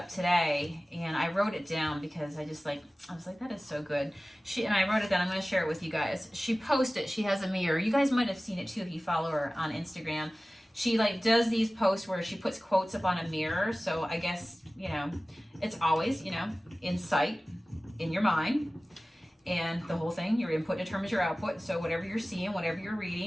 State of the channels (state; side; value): normal; both; correlation 0.97